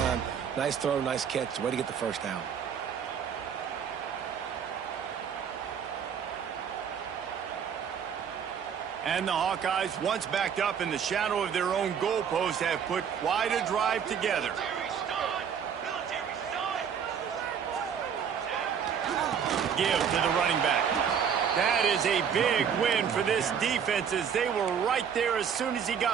Nice throw, nice catch. Way to get the first down. And the Hawkeyes, once backed up in the shadow of their own goalpost, have put quite a drive together. Give to the running back. That is a big win for this defense as they were right there as soon as he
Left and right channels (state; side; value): quieter; left; 7.6 dB